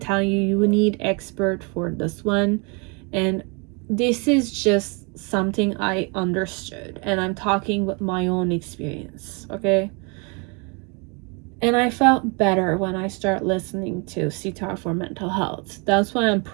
you, you need expert for this one, and this is just something I understood, and I'm talking with my own experience. Okay, and I felt better when I start listening to sitar for mental health. That's why I'm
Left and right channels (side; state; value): left; quieter; 32.7 dB